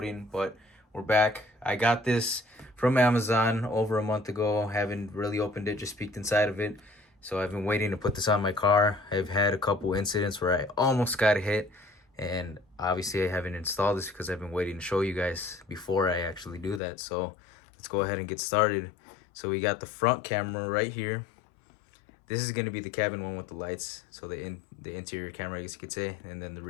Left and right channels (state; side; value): drops out; right; at 16.8 s